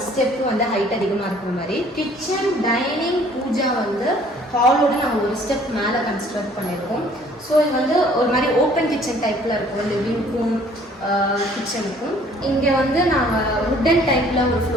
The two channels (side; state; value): both; normal; correlation 0.56